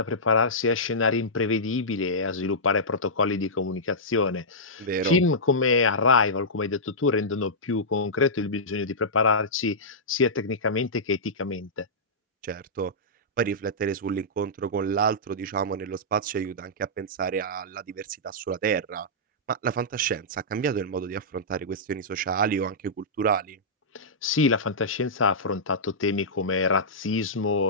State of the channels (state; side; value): normal; both; correlation -0.14